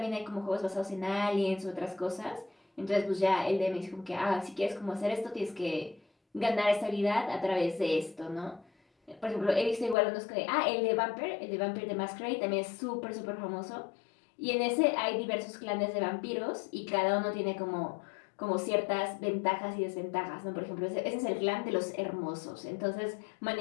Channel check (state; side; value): drops out; right; at 10.0 s